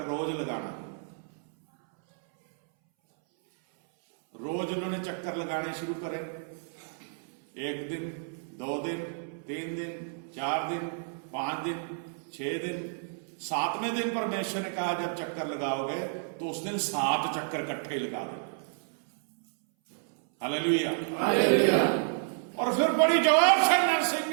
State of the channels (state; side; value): silent; left; 58 dB below the other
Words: रोज लगाना। रोज उन्होंने चक्कर लगाने शुरू करे, 1 दिन, 2 दिन, 3 दिन, 4 दिन, 5 दिन, 6 दिन, 7वें दिन परमेश्वर ने कहा जब चक्कर लगाओगे तो उस दिन 7 चक्कर इकट्ठे लगा दो। Hallelujah, hallelujah. और फिर बड़ी जोर से